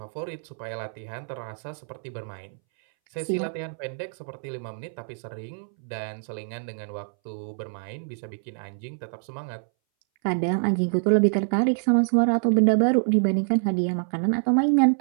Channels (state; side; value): silent; left; 60 dB below the other